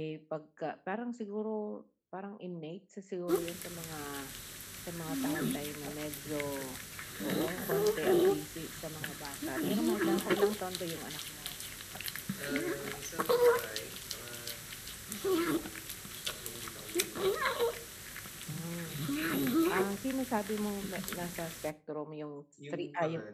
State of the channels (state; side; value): identical; both; correlation 1.00